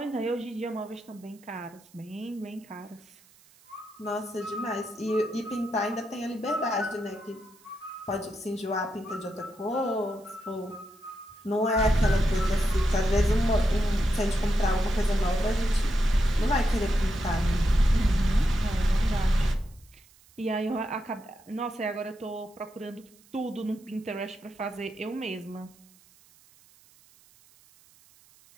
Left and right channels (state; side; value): noise; right; hiss, 28 dB below the sound